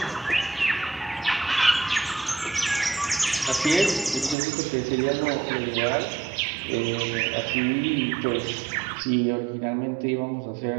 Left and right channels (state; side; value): drops out; left; at 4.4 s